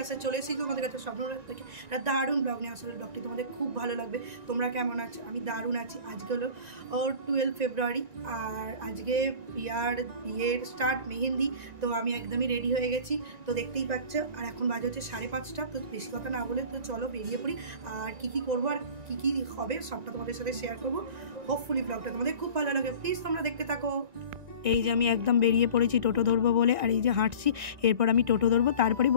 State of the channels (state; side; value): late; left; 1.9 ms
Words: চলে এসেছি তোমাদের কাছে স্বপ্ন থেকে একটা দারুণ ব্লগ নিয়ে। আসলে ব্লগটি তোমাদের খুব ভালো লাগবে। তোমরা কেমন আছো? আমি দারুণ আছি। আজকে হলো 12 ফেব্রুয়ারি আর আজকে বিয়ের স্টার্ট, মেহেন্দি। তো আমি একদমই রেডি হয়ে গেছি, তো দেখতেই পাচ্ছ। আর এখন বাজে হচ্ছে 5:30। তো বেশি কথা না বলে তো চলো বেরিয়ে পড়ি। আর কি করবো আর কি হবে সবটা তোমাদের সাথে শেয়ার করবো। হোপফুলি ব্লগটা তোমাদের খুব ভালো লাগে, প্লিজ তোমরা দেখতে থাকো। এই যে আমি একদম বেরিয়ে পড়েছি টোটো ধরবো বলে, আর এই যে হাঁটছি। এরপর আমি টোটো ধরবো, তারপরে